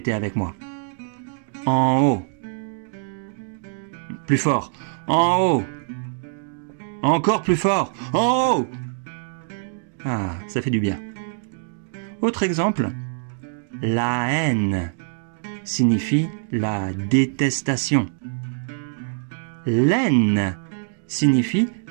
avec moi. En haut. Plus fort. En haut. Encore plus fort. En haut. Ah, ça fait du bien. Autre exemple. La haine signifie la détestation. L'aine signifie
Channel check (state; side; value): silent; left; digital silence